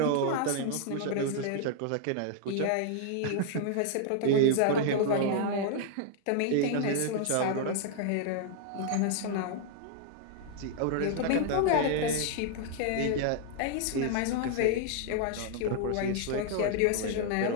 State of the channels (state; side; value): different; both; correlation 0.00